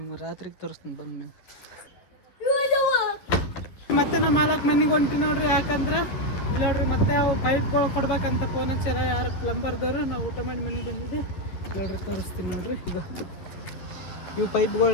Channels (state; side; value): late; right; 11 ms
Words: ರಾತ್ರಿಗೆ ತೋರಿಸ್ತೀನಿ ಬಂದ್ಮೇಲೆ. ಮತ್ತೆ ನಮ್ಮ ಮಾಲಕ್ ಮನೆಗೆ ಹೊಂಟಿ ನೋಡ್ರಿ. ಯಾಕಂದ್ರೆ ಇಲ್ಲಿ ನೋಡ್ರಿ ಮತ್ತೆ ಅವು ಪೈಪ್ಗಳು ಕೊಡ್ಬೇಕಂತ ಫೋನ್ ಹಚ್ಚಾರ ಯಾರು ಪ್ಲಂಬರ್ದವರು. ನಾವು ಊಟ ಮಾಡಿ ಮನೆಗೆ ಬಂದಿದ್ದೆ ನೋಡ್ರಿ. ತೋರಿಸ್ತೀನಿ ನೋಡ್ರಿ. ಈಗ ಇವು